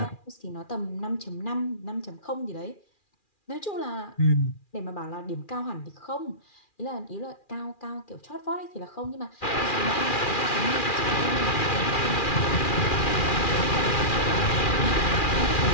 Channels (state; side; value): late; right; 2.4 ms